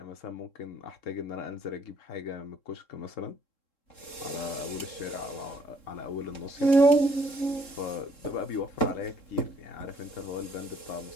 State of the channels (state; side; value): late; right; 3.7 ms